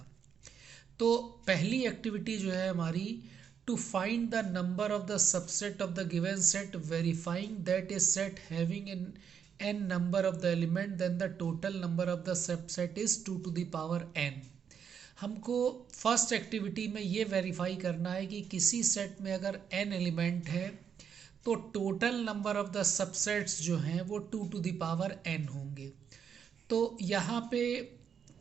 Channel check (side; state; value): left; quieter; 7.6 dB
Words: तो पहली एक्टिविटी जो है हमारी, to find the number of the subset of the given set verifying that is set having in n number of the element then the total number of the subset is 2 to the power n। हमको first activity में ये verify करना है कि किसी set में अगर n element है तो total number of the subsets जो हैं वो 2 टू द पावर n होंगे। तो यहाँ पे